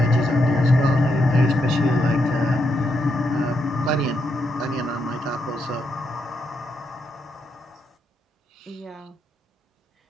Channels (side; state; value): both; normal; correlation 0.80